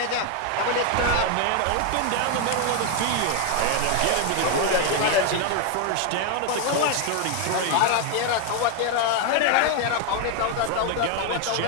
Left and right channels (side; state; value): both; different; correlation 0.01